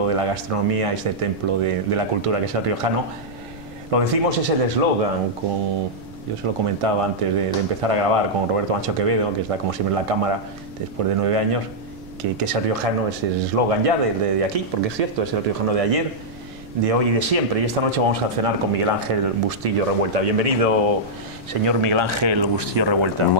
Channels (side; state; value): right; noise; rumble, 19 dB below the sound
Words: de la gastronomía, a este templo de la cultura que es el riojano. Lo decimos, es el eslogan, yo se lo comentaba antes de empezar a grabar con Roberto Macho Quevedo, que está como siempre en la cámara después de 9 años, que es el riojano, es el eslogan ya de aquí, porque es cierto, es el riojano de ayer, de hoy y de siempre. Y esta noche vamos a cenar con Miguel Ángel Bustillo Revuelta. Bienvenido, señor Miguel Ángel Bustillo Revuelta.